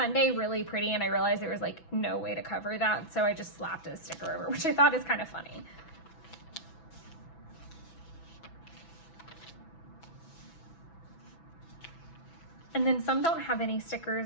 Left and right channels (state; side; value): late; right; 6.1 ms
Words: really pretty and I realized there was like no way to cover that. So I just slapped a sticker over, which I thought is kind of funny. And then some don't have any